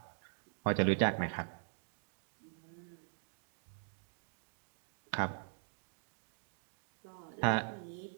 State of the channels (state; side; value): silent; left; digital silence